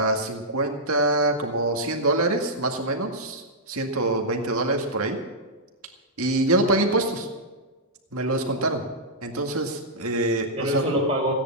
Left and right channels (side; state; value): both; normal; correlation -0.10